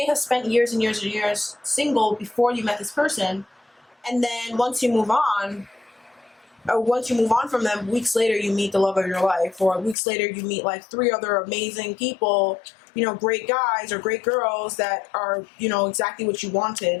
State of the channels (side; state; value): right; drops out; at 10.0 s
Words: have spent years and years and years single before you met this person. And then once you move on, or once you move on from them, weeks later you meet the love of your life, or weeks later you meet like 3 other amazing people, you know, great guys or great girls that are, you know, exactly what you